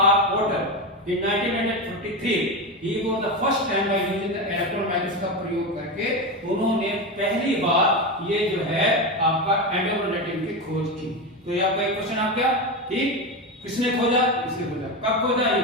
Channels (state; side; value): normal; both; correlation 0.17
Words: R. Porter in 1943. He was the first time by using the electron microscope का प्रयोग करके उन्होंने पहली बार ये जो है आपका एंडोप्लाज्मिक रेटिकुलम की खोज की. तो ये आपका एक क्वेश्चन आ गया. ठीक, किसने खोजा? इसने खोजा. कब खोजा? ये